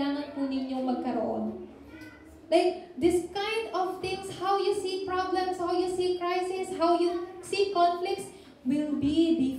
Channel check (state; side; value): identical; both; correlation 1.00